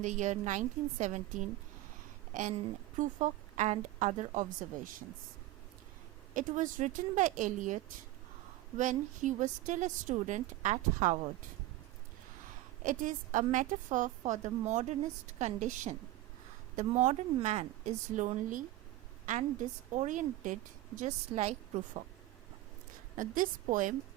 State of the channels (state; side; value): quieter; left; 16.2 dB